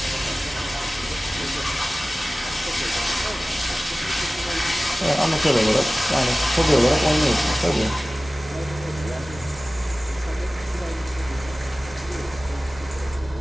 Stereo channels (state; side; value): normal; both; correlation 0.97